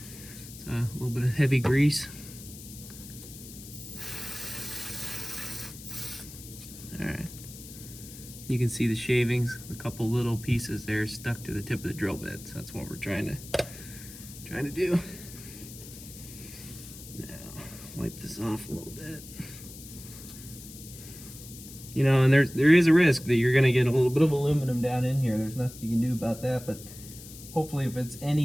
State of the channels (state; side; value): noise; left; hiss, 15 dB below the sound